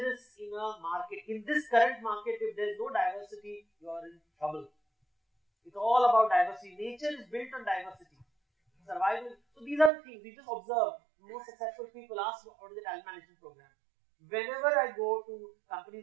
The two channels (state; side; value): drops out; left; at 9.9 s